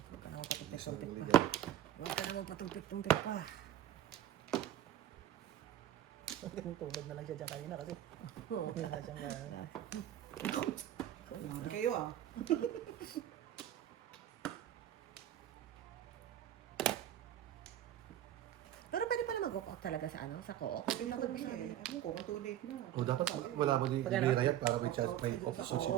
Huwag ka na magpatumpik-tumpik Sorry, pa. naligaw. Huwag ka na magpatumpik-tumpik pa. Tulog na lang siya dyan kanina kasi wala na siyang Grabe kayo ah. Pero pwede pala mag-walk out talaga sa ano, sa co-op. Dapat masabi. Ano ko, kung too late na. O dapat wala mo di Pag ano? kaya para may chance may option siya,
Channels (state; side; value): quieter; left; 11.7 dB